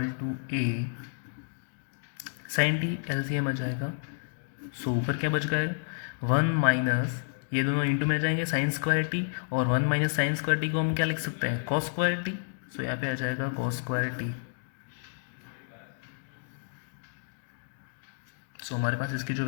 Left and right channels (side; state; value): right; silent; digital silence